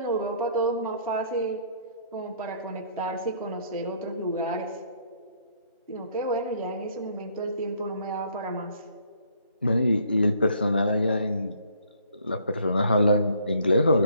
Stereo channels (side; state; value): both; inverted; correlation -0.64